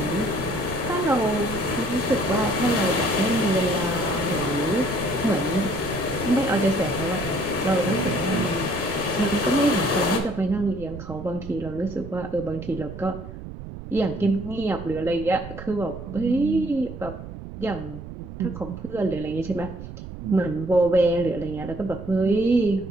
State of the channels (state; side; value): noise; right; rumble, 11 dB below the sound